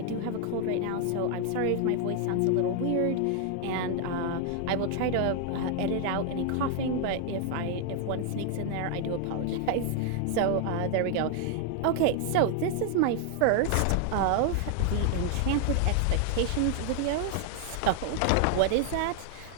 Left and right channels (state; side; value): different; both; correlation 0.00